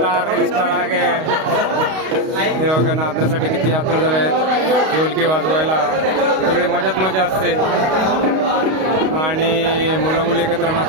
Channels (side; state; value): left; late; 32 ms